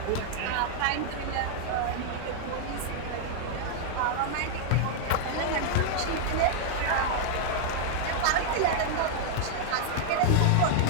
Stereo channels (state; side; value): different; both; correlation -0.01